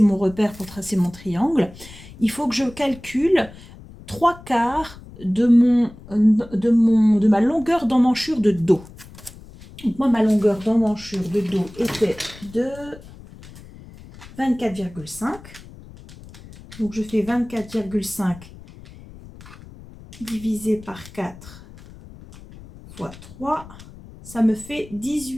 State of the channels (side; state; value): left; noise; rumble, 19 dB below the sound